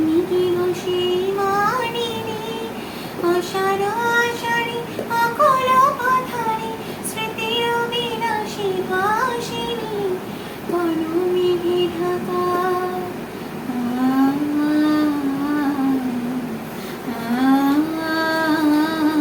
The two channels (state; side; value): identical; both; correlation 1.00